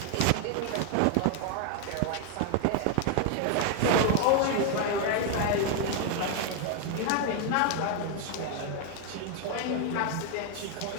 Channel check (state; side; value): different; both; correlation 0.01